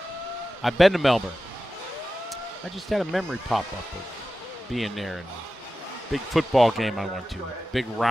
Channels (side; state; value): both; normal; correlation 0.94